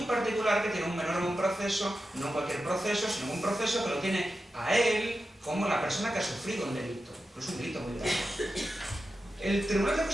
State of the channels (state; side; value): normal; both; correlation 0.91